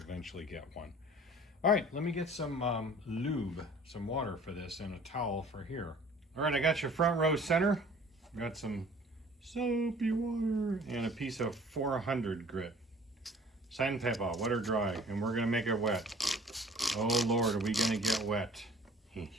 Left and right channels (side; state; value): both; normal; correlation 0.50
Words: get one. All right, let me get some lube, some water for this, and a towel for here. All right, I got your front row center. Got some soapy water and a piece of 400 grit. Sandpaper, wet or dry, and we're gonna make it wet. Oh Lord, are we gonna get wet?